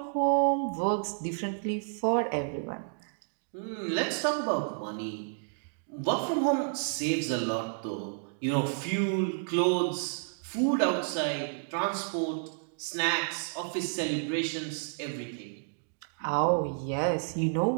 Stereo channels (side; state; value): left; silent; digital silence